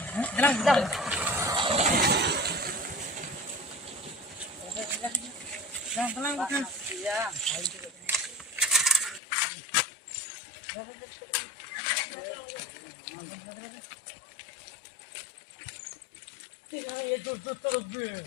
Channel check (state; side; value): drops out; right; at 9.2 s